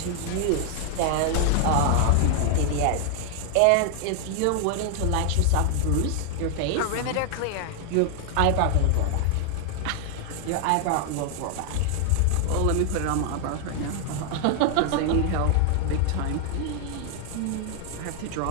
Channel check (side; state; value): both; different; correlation 0.00